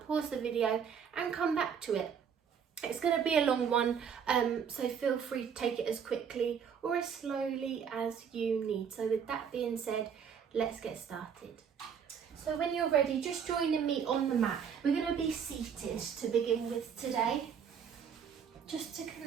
pause the video and come back to it. It's going to be a long one, so feel free to take it as quickly or as slowly as you need. So with that being said, let's get started. So when you're ready, just joining me on the mat. We're going to be seated to begin with today, just to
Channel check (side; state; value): left; quieter; 7.3 dB